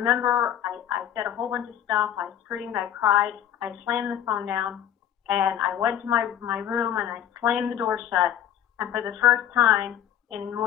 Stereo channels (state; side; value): quieter; right; 10.4 dB